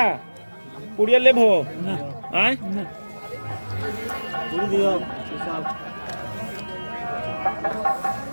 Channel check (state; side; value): inverted; both; correlation -1.00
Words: पुड़िया ले भो आए